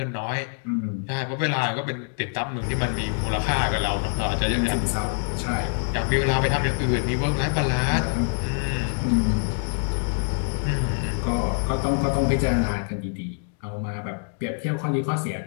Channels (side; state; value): right; silent; 62 dB below the other